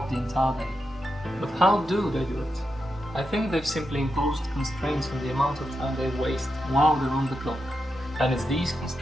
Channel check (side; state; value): both; normal; correlation 0.87